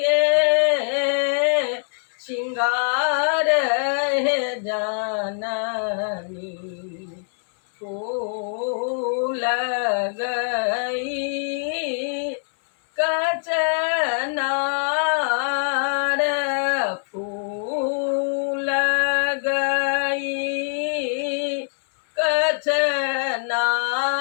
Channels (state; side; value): silent; right; 62 dB below the other